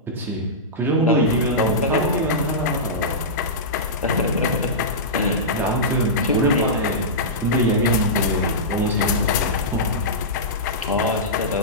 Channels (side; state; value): both; normal; correlation -0.15